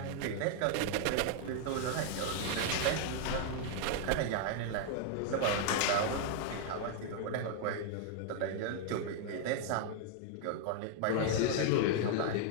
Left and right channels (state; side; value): different; both; correlation 0.00